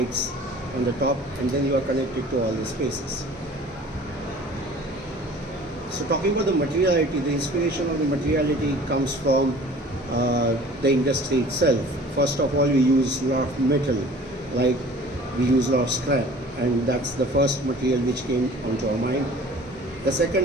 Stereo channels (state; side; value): normal; both; correlation 0.47